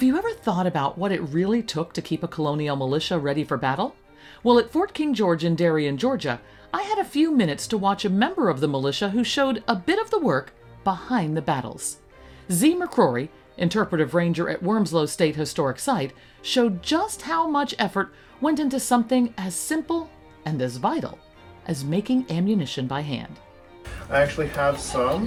you ever thought about what it really took to keep a colonial militia ready for battle? Well, at Fort King George in Darien, Georgia, I had a few minutes to watch a member of the militia who showed a bit of the work behind the battles. Zi McCrory, Interpretive Ranger at Wormsloe State Historic Site, showed just how much effort went into something as simple and as vital as making ammunition by hand. I actually have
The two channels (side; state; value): both; identical; correlation 1.00